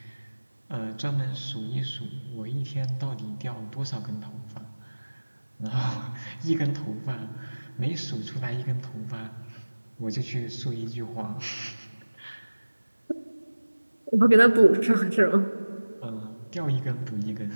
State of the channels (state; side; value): inverted; both; correlation -1.00